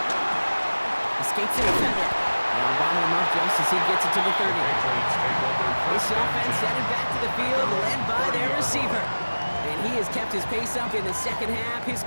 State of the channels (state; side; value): inverted; both; correlation -1.00